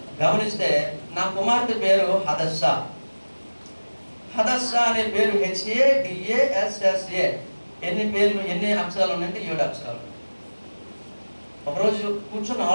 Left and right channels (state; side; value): inverted; both; correlation -1.00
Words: గమనిస్తే నా కుమార్తె పేరు హదస్సా. హదస్సా అనే పేరు HADASSA. ఎన్ని అక్షరాలు ఉన్నాయంటే 7 అక్షరాలు. ఒకరోజు కూర్చొని